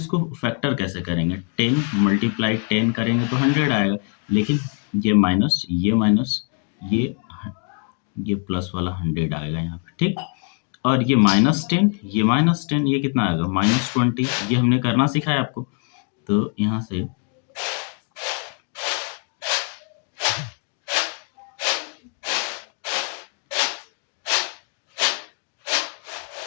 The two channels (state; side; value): quieter; right; 39.7 dB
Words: फैक्टर कैसे करेंगे, 10 मल्टीप्लाई 10 करेंगे तो 100 आएगा। लेकिन ये माइनस ये प्लस वाला 100 आएगा यहाँ पे। ठीक, और ये -10, ये -10, ये कितना आएगा, -20। ये हमने करना सिखाया आपको। तो यहाँ से